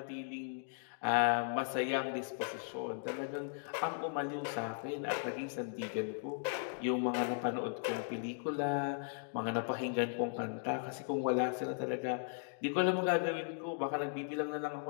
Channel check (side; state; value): right; silent; digital silence